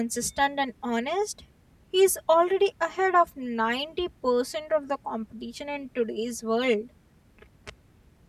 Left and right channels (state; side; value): identical; both; correlation 1.00